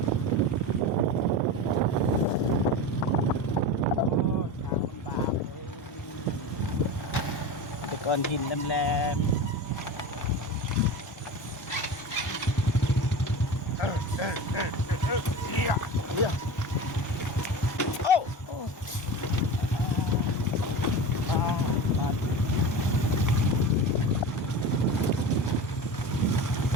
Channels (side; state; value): both; normal; correlation 0.29